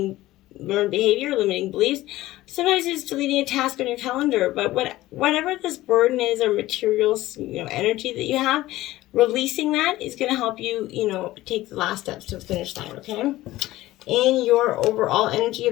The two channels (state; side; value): quieter; right; 16.6 dB